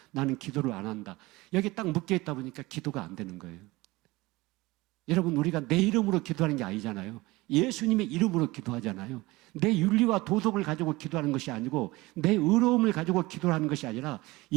나는 기도를 안 한다. 여기 딱 묶여 있다 보니까 기도가 안 되는 거예요. 여러분, 우리가 내 이름으로 기도하는 게 아니잖아요. 예수님의 이름으로 기도하잖아요. 내 윤리와 도덕을 가지고 기도하는 것이 아니고, 내 의로움을 가지고 기도하는 것이 아니라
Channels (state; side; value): quieter; left; 21.0 dB